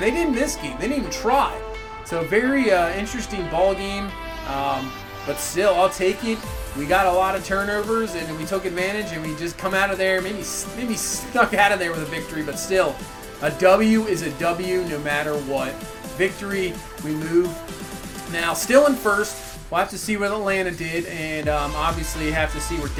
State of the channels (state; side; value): identical; both; correlation 1.00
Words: they didn't this game. They didn't even try. So very interesting ball game. But still, I'll take it. We got a lot of turnovers, and we took advantage, and we just come out of there, maybe snuck out of there with a victory, but still, a W is a W no matter what. Victory, we move. Now, still in first. We'll have to see what Atlanta did, and obviously have to see where